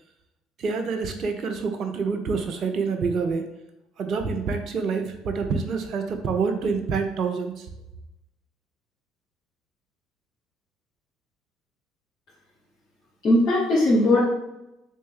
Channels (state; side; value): normal; both; correlation 0.72